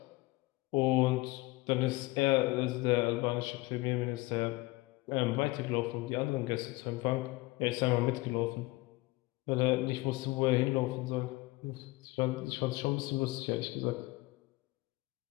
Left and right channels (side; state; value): right; quieter; 21.6 dB